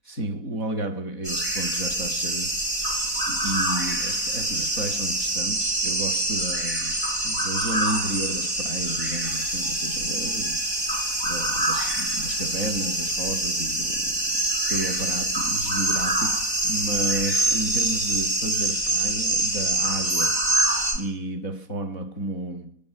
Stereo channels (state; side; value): late; right; 4.1 ms